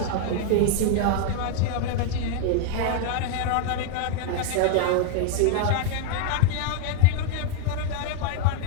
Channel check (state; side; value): different; both; correlation 0.00